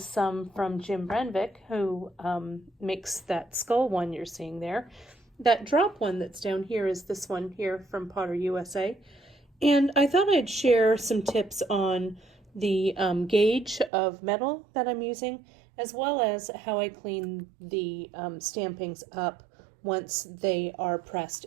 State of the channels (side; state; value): left; drops out; at 13.9 s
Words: some from Jim Brenvick, who makes that skull one you're seeing there. That drop one that's down here is this one here from Potter USA. And I thought I'd share some tips on the gauge of metal that I'm using, as well as how I clean the stampings up once they are pressed